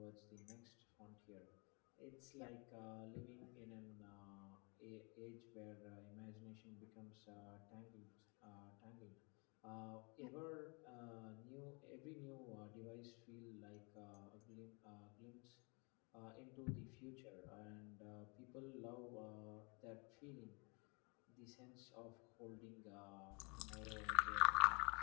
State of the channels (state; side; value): quieter; right; 29.6 dB